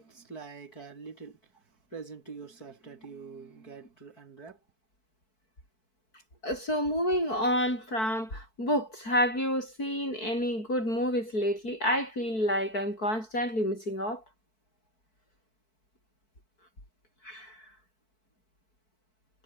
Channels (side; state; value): right; late; 4.6 ms